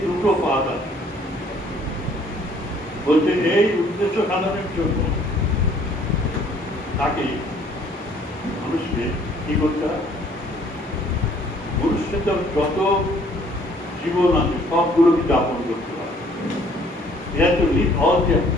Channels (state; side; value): normal; both; correlation 0.59